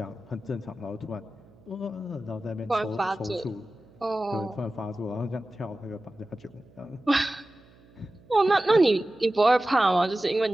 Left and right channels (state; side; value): noise; right; hum, 27 dB below the sound